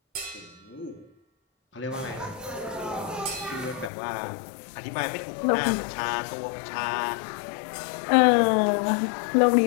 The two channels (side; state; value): right; drops out; at 3.9 s